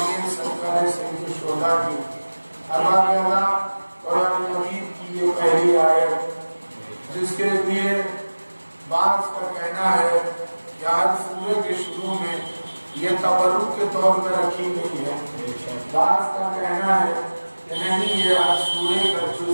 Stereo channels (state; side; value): inverted; both; correlation -1.00